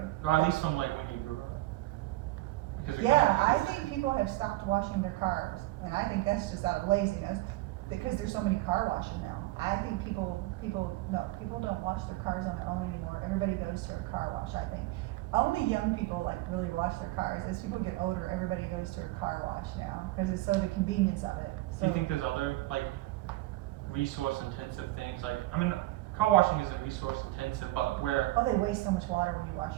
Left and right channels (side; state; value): left; quieter; 18.2 dB